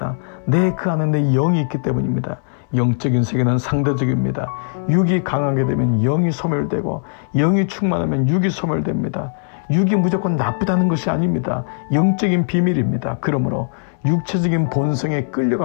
그 안에 내 영이 있기 때문입니다. 영적인 세계는 상대적입니다. 육이 강하게 되면 영이 소멸되고 영이 충만하면 육이 소멸됩니다. 육이 무조건 나쁘다는 것이 아닙니다. 영적인 비밀입니다. 그러므로 육체적인 본성에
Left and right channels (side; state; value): right; silent; 66 dB below the other